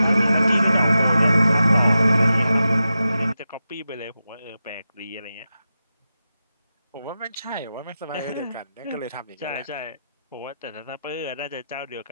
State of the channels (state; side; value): inverted; both; correlation -0.91